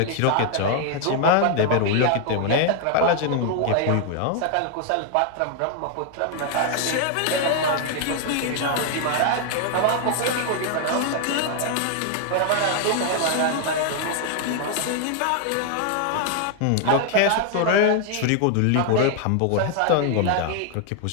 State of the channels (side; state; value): both; different; correlation 0.00